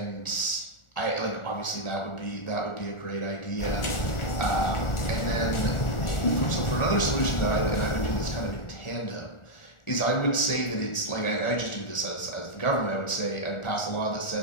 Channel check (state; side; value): late; right; 1.4 ms